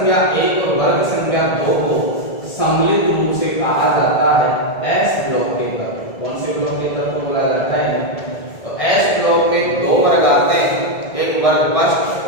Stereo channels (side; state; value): right; late; 1.8 ms